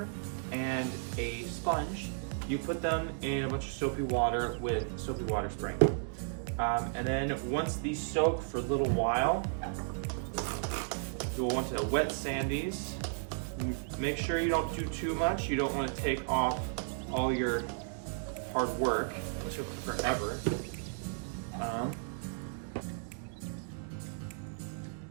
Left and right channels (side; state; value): left; silent; digital silence